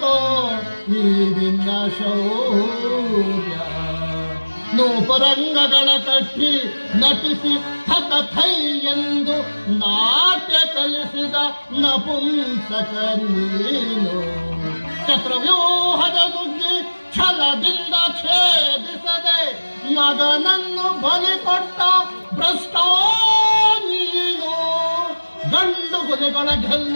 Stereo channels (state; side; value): inverted; both; correlation -1.00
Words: ಈ ನಿನ್ನ ಶೌರ್ಯ. ನೂಪುರಂಗಗಳ ಕಟ್ಟಿ ನಟಿಸಿ ಥಕಥೈ ಎಂದು ನಾಟ್ಯ ಕಲಿಸಿದ ನಪುಂಸಕ ನೀನು. ಚಕ್ರವ್ಯೂಹದ ನುಗ್ಗಿ ಛಲದಿಂದ ಛೇದಿಸದೆ ಮಗನನ್ನು ಬಲಿ ಕೊಟ್ಟ ಭ್ರಷ್ಟ ನೀನು. ಗಂಡು ಗುಲಿಗಳ